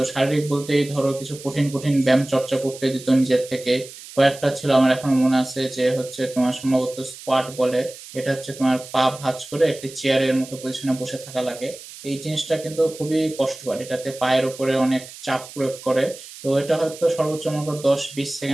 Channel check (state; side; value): noise; right; hiss, 16 dB below the sound